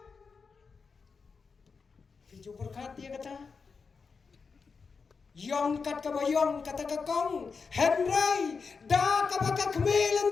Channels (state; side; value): quieter; right; 5.1 dB